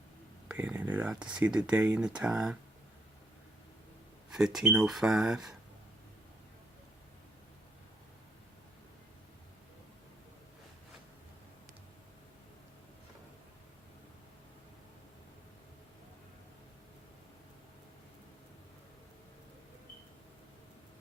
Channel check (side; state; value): both; normal; correlation 0.73